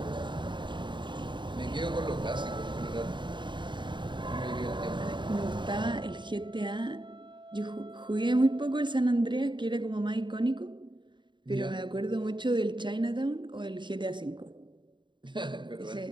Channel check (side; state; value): left; late; 0.23 ms